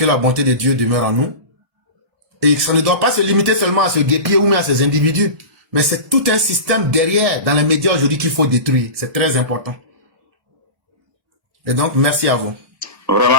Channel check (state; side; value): late; left; 1.7 ms